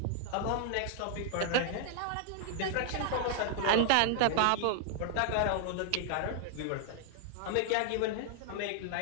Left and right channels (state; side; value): different; both; correlation 0.00